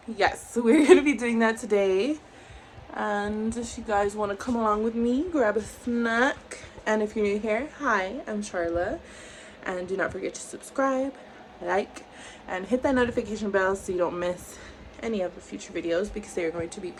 yes, we're gonna be doing that today. And if you guys want to come along with me, grab a snack. And if you're new here, hi, I'm Charla. And do not forget to subscribe, like, and hit that notification bell so you don't miss any of the future videos because they are going to be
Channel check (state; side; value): identical; both; correlation 1.00